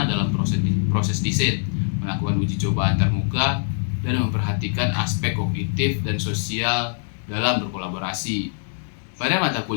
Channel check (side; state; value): right; silent; digital silence